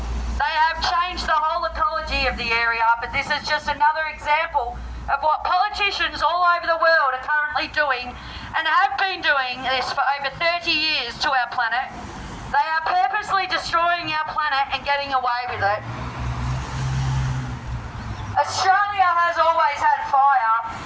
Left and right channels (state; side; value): identical; both; correlation 1.00